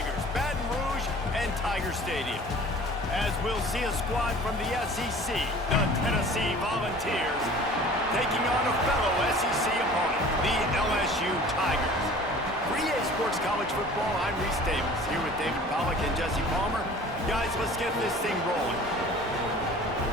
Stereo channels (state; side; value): normal; both; correlation 0.45